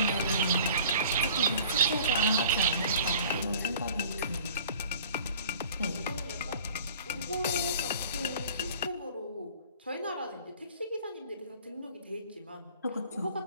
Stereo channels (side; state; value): both; inverted; correlation -0.48